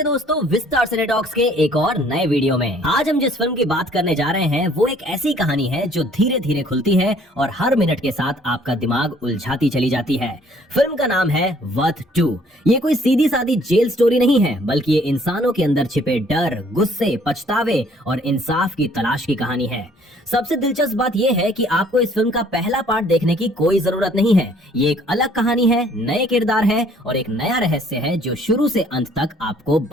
दोस्तों विस्तार सिनेटॉक्स के एक और नए वीडियो में। आज हम जिस फिल्म की बात करने जा रहे हैं वो एक ऐसी कहानी है जो धीरे धीरे खुलती है और हर मिनट के साथ आपका दिमाग उलझाती चली जाती है। फिल्म का नाम है वर्थ 2। ये कोई सीधी सादी जेल स्टोरी नहीं है, बल्कि ये इंसानों के अंदर छिपे डर, गुस्से, पछतावे और इंसाफ की तलाश की कहानी है। सबसे दिलचस्प बात यह है कि आपको इस फिल्म का पहला पार्ट देखने की कोई जरूरत नहीं है। ये एक अलग कहानी है, नए किरदार है और एक नया रहस्य है जो शुरू से अंत तक आपको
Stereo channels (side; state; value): both; normal; correlation 0.59